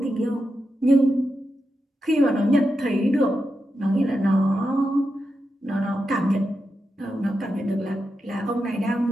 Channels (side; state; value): both; normal; correlation 0.88